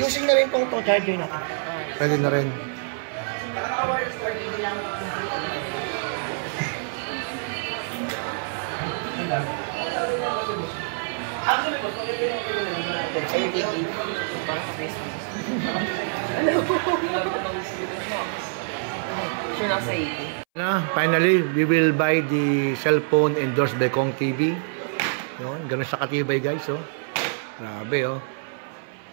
na rin pong itong charger natin. Pwede na rin. Finally, we will buy the cellphone endorsed by Kong TV. Yun, ganun siya katibay, guys, oh. Grabe, oh.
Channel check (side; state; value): left; silent; 61 dB below the other